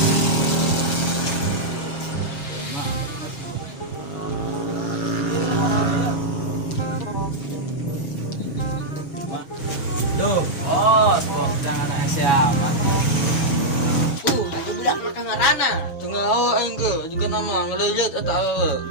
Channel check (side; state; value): right; late; 6.2 ms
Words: Tuh, bos jangan anak siapa? Ada budak makan ngarana. Tengah awak enggak juga nama ngelilit atau